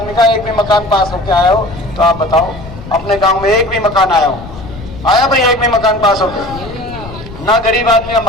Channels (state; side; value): noise; left; rumble, 14 dB below the sound